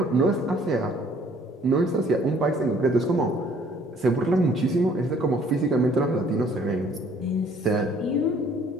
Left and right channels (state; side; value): normal; both; correlation 0.59